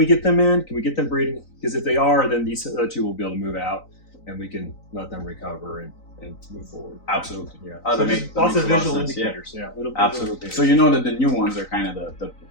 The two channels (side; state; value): right; late; 3.9 ms